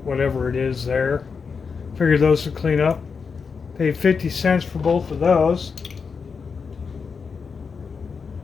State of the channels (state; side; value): quieter; right; 5.5 dB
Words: whatever it is there. Figured those would clean up. Paid 50 cents for both of those.